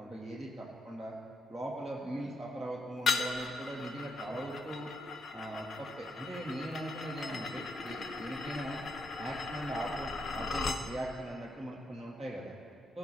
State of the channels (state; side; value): normal; both; correlation 0.77